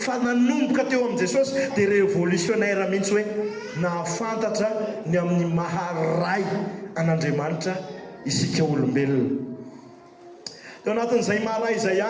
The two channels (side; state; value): both; identical; correlation 1.00